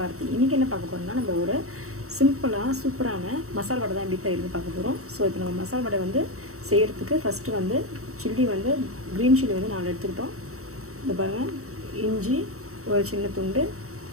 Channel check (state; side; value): late; left; 0.64 ms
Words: இன்னைக்கு என்ன பார்க்க போறோம்னா நம்ம ஒரு சிம்பிளா சூப்பரான மசால் வடை தான் எப்படி செய்யறது பார்க்க போறோம். சோ இப்போ நம்ம மசால் வடை வந்து செய்யிறதுக்கு ஃபர்ஸ்ட் வந்து சில்லி வந்து green chilli வந்து நான் எடுத்துக்கிட்டோம். இந்த பாருங்க இஞ்சி ஒரு சின்ன துண்டு